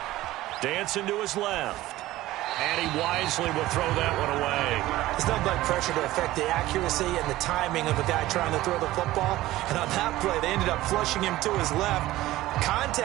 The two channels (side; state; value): left; quieter; 16.4 dB